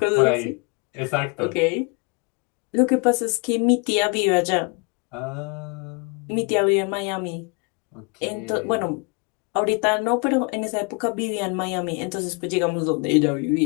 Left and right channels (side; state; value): right; quieter; 32.7 dB